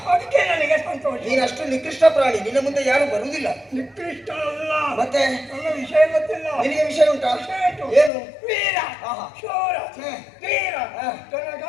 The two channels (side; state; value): right; drops out; at 8.1 s